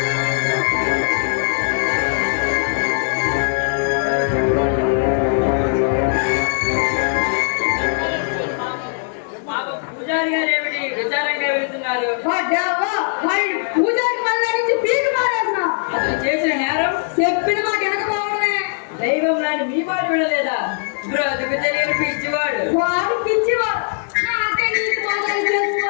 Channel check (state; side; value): silent; right; 66 dB below the other